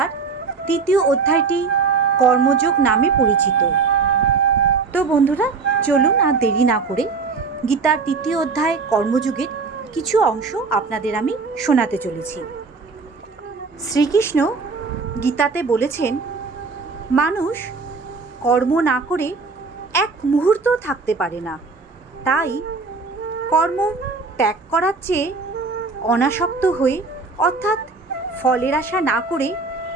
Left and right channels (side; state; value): left; quieter; 4.5 dB